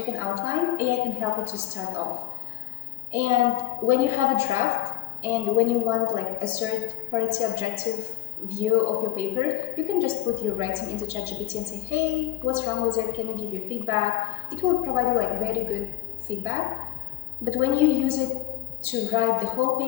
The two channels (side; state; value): right; quieter; 16.3 dB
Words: an outline, AI can help you to start off. And when you have a draft and when you want like a third-party objective view of your paper, you can just put your writing into ChatGPT and say, hey, what's wrong with it? Can you give your feedback? It will provide you like very good feedback. But when you use it to write the whole